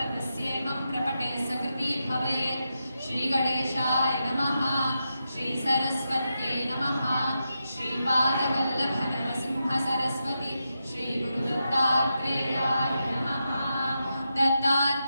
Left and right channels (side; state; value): both; inverted; correlation -0.87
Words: प्रपटे सकृती भवेत् श्रीगणेशाय नमः श्रीसरस्वत्यै नमः श्रीपादवल्लभनरसिंहसरस्वती श्रीगुरुदत्तात्रेयाय नमः